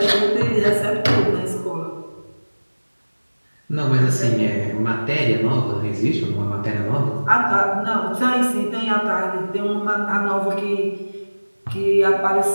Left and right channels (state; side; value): inverted; both; correlation -1.00